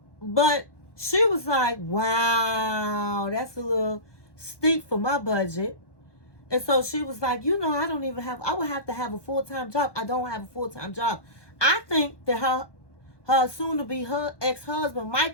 But she was like, wow, that's a little steep for my budget. And so she was like, I would have to have a full-time job. I don't have a full-time job. I think that her soon-to-be ex-husband,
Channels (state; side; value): late; right; 1.1 ms